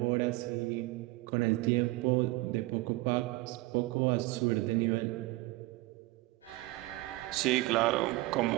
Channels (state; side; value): quieter; left; 20.3 dB